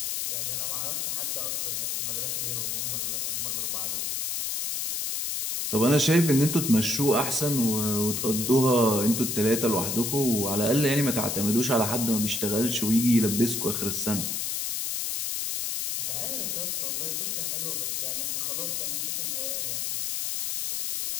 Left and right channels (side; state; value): left; noise; hiss, 1 dB below the sound